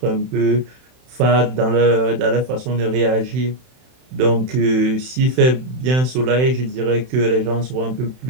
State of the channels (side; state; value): left; late; 31 ms